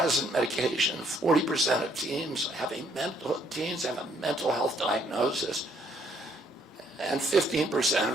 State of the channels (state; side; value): normal; both; correlation 0.67